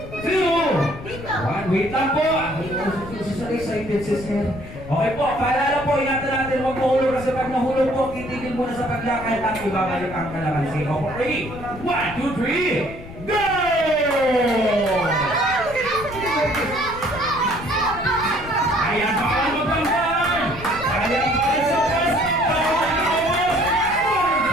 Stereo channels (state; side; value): noise; left; rumble, 14 dB below the sound